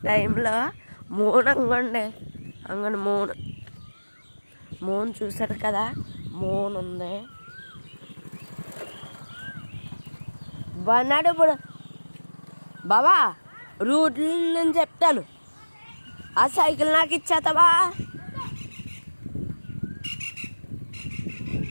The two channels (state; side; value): inverted; both; correlation -1.00